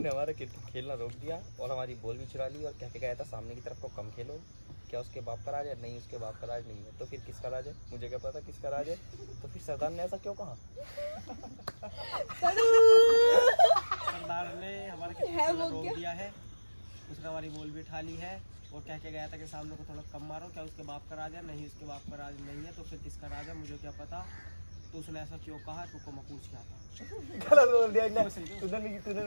हमारा क्रिकेट खेलना रोक दिया और हमारी बॉल भी चुरा ली और कह के गया था सामने की तरफ को कम खेलो। क्या उसके बाप का राज है? नहीं, उसके बाप का राज नहीं है। तो फिर किसका राज है? मुझे क्या पता किसका राज है। तो फिर सरदार ने ऐसा क्यों कहा? सरदार ने हमारा क्रिकेट खेलना रोक दिया है, उसने हमारी बॉल भी उठा ली है और कह के गया था कि सामने को थोड़ा कम मारो। क्या उसके बाप का राज है? नहीं, उसके बाप का राज नहीं है। तो फिर किसका राज है? मुझे क्या पता। तो उसने ऐसा क्यों कहा? तुमको मैं पूछ क्या था। गलत बोल दिया तूने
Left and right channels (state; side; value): inverted; both; correlation -1.00